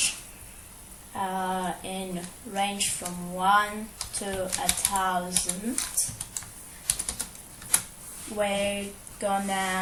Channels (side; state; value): both; identical; correlation 1.00